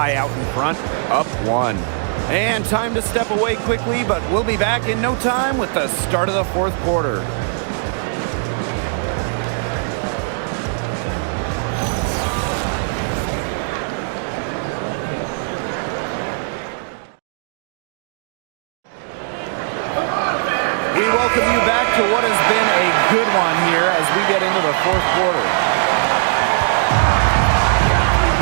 out in front, up 1. And time to step away quickly, but we'll be back in no time with the start of the fourth quarter. We welcome you back to what has been a good one here as we get into the fourth quarter.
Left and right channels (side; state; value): left; silent; digital silence